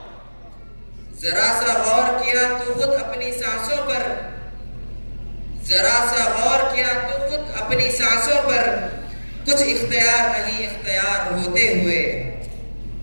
जरा सा गौर किया तो खुद अपनी सांसों पर। जरा सा गौर किया तो खुद अपनी सांसों पर। कुछ इख्तियार नहीं इख्तियार होते हुए।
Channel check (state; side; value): inverted; both; correlation -1.00